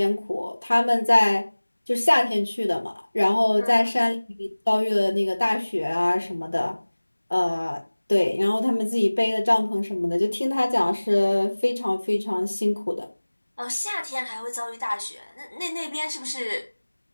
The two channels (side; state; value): both; inverted; correlation -1.00